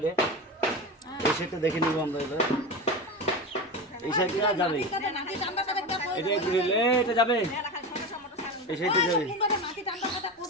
এই সাইডটা দেখে নিব আমরা এবার এই সাইডে যাবে এটা যাবে এই সাইডে যাবে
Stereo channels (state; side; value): normal; both; correlation 0.23